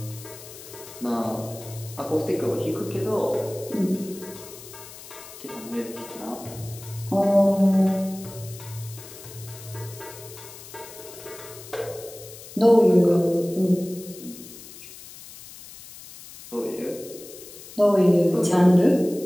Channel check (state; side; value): noise; left; hiss, 16 dB below the sound